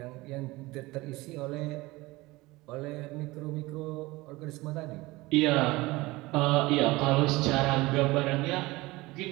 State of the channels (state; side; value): quieter; left; 20.9 dB